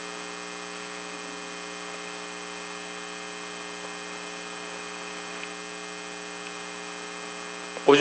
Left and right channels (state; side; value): identical; both; correlation 1.00